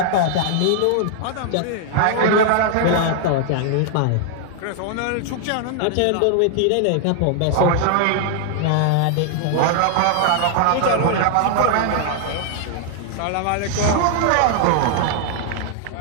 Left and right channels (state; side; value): different; both; correlation 0.00